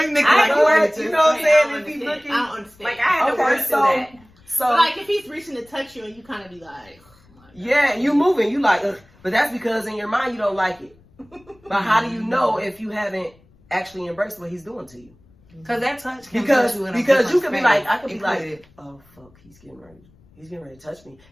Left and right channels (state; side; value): noise; left; rumble, 30 dB below the sound